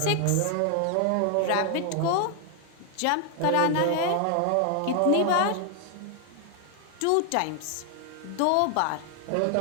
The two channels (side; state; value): both; different; correlation 0.00